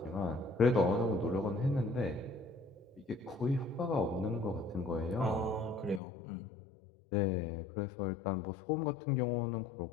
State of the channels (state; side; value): drops out; right; at 6.0 s